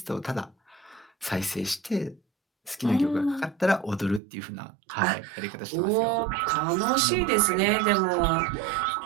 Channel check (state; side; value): drops out; left; at 4.2 s